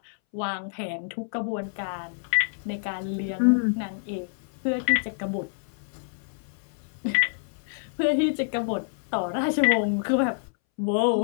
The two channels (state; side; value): silent; right; 60 dB below the other